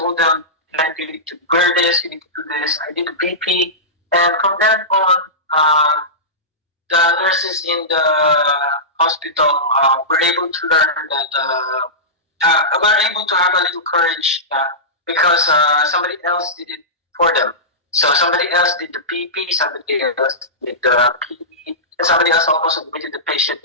them, you need to wear this, you need to do this. I did the PP, and from then on, the nurses in the hospital were able to learn that were able to have a little courage because somebody else did it for them. So somebody else did the PP, somebody else did the PE, and somebody else also admitted the patient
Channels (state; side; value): normal; both; correlation -0.17